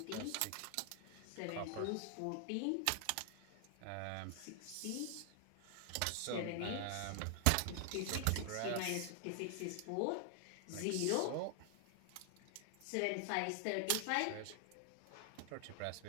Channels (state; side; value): different; both; correlation 0.00